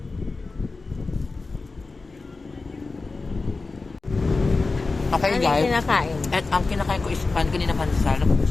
Okay Ano yung guys, kinakain? at ang kinakain ko is pan kanina pansal. Ito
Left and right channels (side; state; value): right; quieter; 3.8 dB